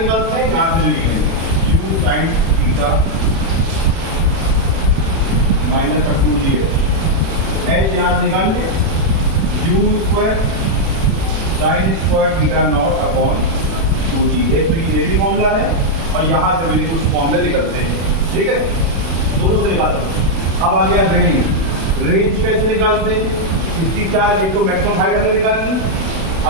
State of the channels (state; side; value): late; left; 36 ms